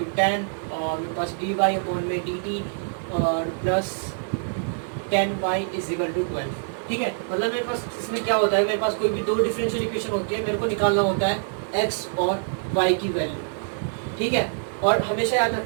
10 और मेरे पास dy अपॉन में dt और plus 10y is equal to 12। ठीक है, मतलब मेरे पास इसमें क्या होता है, मेरे पास कोई भी दो डिफरेंशियल इक्वेशन होती है, मेरे को निकालना होता है x और y की वैल्यू। ठीक है, और हमेशा याद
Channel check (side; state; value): left; silent; digital silence